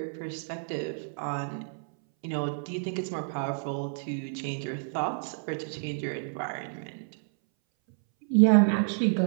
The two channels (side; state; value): left; silent; 58 dB below the other